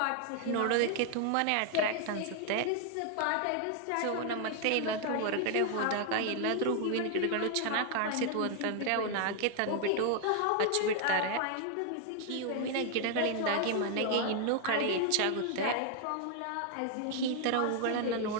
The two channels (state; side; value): different; both; correlation 0.00